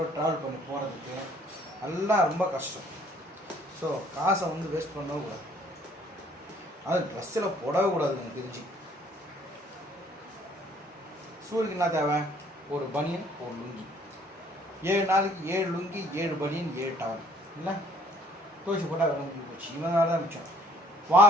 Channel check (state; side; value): normal; both; correlation 0.59